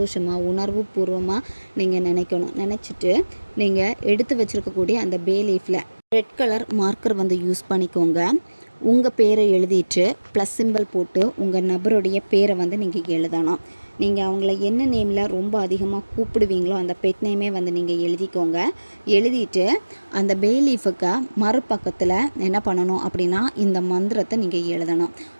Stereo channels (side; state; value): both; inverted; correlation -1.00